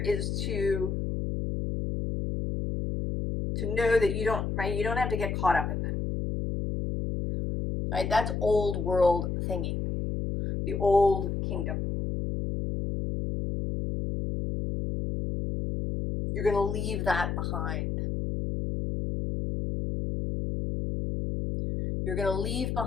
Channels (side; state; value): left; noise; hum, 2 dB below the sound